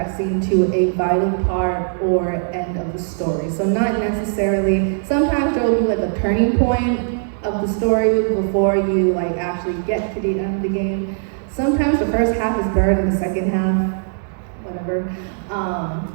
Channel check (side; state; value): left; silent; digital silence